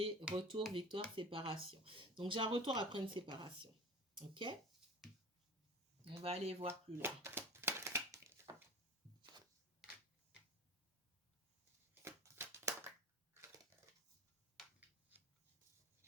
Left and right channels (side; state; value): both; normal; correlation 0.37